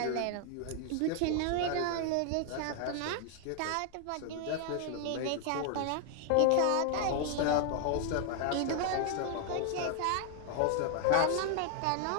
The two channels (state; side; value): different; both; correlation 0.00